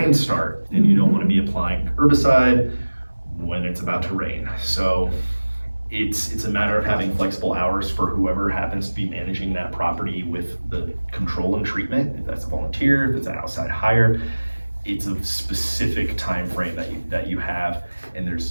start, and you don't want to be applying herbicide when it's about to rain. So it's a matter of having flexible hours for whoever happens to be managing that property with the control and treatment. If that's a volunteer, if it's an outside hire, it's a specific time frame that you have, and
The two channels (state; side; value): inverted; both; correlation -1.00